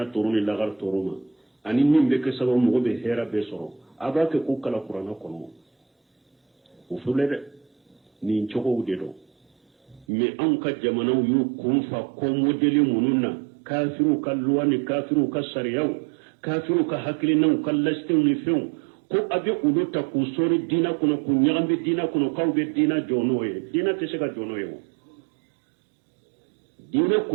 toroni lagar toroma ani min be ke sababu mugo be hera be soro abake ku kala qur'ana kono u fulede ni chogo ude do me an ka jamanaw yu kunfa ko modeli mununna kafiru kalluwani kafiru kasariyau kafiru ka hakili nan kallaste ni few ko abe ulota ku sori dina kuno ku nyagambe dina kuno kawbe dina jonoye dina tesega jonoye dina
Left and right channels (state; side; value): drops out; left; at 10.1 s